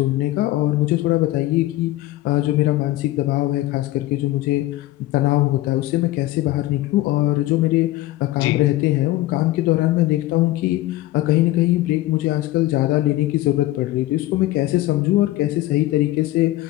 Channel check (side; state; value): right; quieter; 16.6 dB